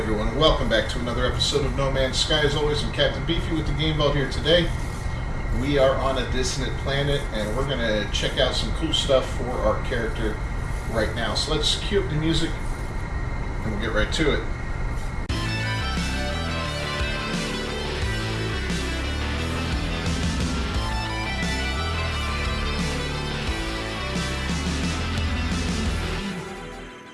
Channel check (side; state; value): both; identical; correlation 1.00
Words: welcome back to another episode of No Man's Sky. As always, I'm Captain Beefy with the Game Vault here today. We are on a dissonant planet and we're going to check out some cool stuff for our character right now. So let's cue up the music and we'll get right to it.